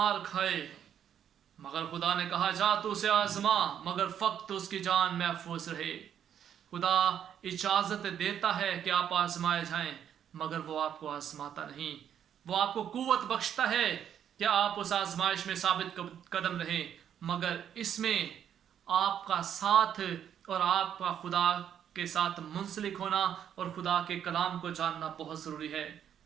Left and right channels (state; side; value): quieter; left; 9.3 dB